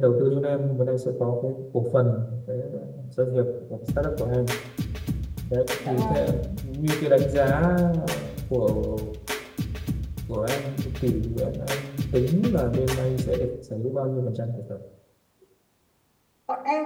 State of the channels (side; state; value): both; identical; correlation 1.00